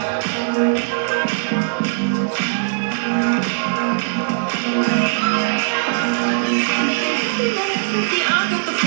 I got the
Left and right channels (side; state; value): left; silent; digital silence